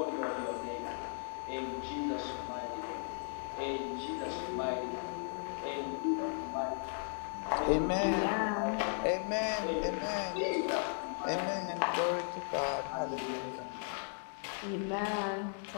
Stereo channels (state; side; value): silent; right; digital silence